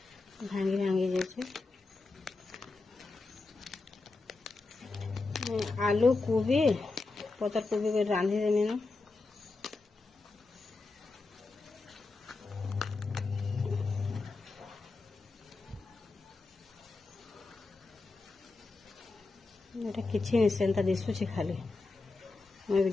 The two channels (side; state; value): right; quieter; 3.7 dB